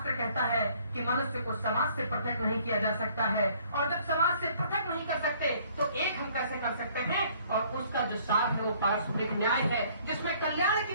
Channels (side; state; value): both; inverted; correlation -0.60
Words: कहता है कि मनुष्य को समाज से पृथक नहीं किया जा सकता है, और जब समाज से पृथक नहीं कर सकते तो एक हम कैसे कर सकते हैं, और उसका जो सार है वो पारस्परिक न्याय है जिसमें कल्याण की